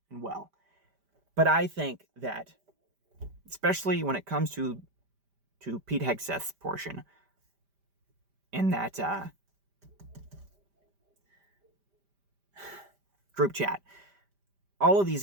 and well. But I think that, especially when it comes to Pete Hegseth's portion in that group chat, all of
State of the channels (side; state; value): left; late; 5.1 ms